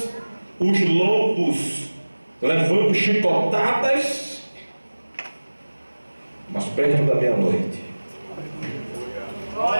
os lombos levando chicotadas. Mas perto da meia-noite,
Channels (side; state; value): both; inverted; correlation -1.00